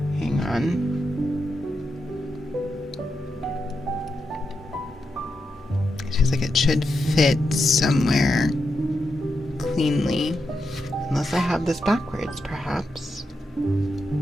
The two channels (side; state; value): both; normal; correlation 0.85